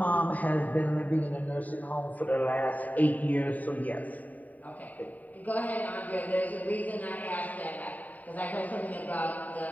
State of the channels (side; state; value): right; late; 0.076 ms